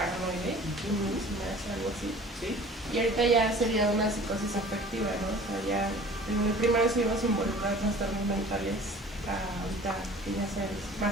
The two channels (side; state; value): both; normal; correlation 0.46